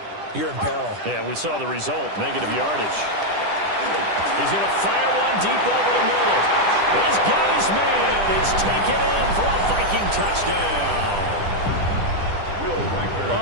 you're in peril. Yeah, we saw the result, negative yardage. He's going to fire one deep over the middle. He's got his man. It's taken in for a Viking touchdown.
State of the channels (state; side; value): late; left; 10 ms